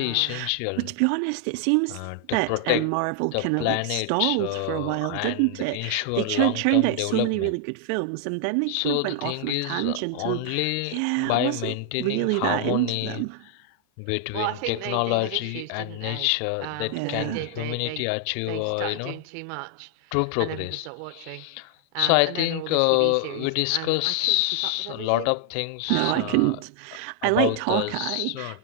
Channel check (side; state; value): both; different; correlation 0.00